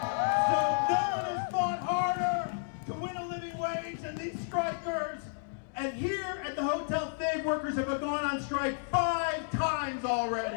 So no one has fought harder to win a living wage than these strikers. And here at the Hotel Fig, workers have gone on strike 5 times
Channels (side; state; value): right; silent; digital silence